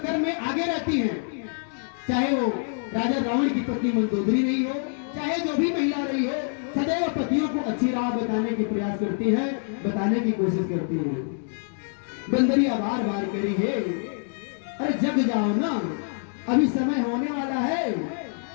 में आगे रहती हैं, चाहे वो राजा रावण की पत्नी मंदोदरी रही हो, चाहे जो भी महिला रही हो, सदैव पतियों को अच्छी राह बताने की प्रयास करती है, बताने की कोशिश करती है। बंदरिया बार बार करी है, अरे जग जाओ ना, अभी समय होने वाला है,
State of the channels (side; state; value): right; silent; 61 dB below the other